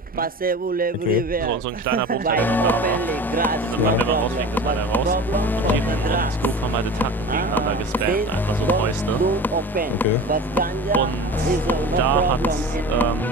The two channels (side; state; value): both; normal; correlation 0.35